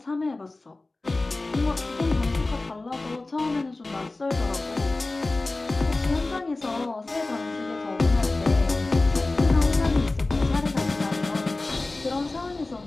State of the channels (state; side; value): quieter; right; 3.1 dB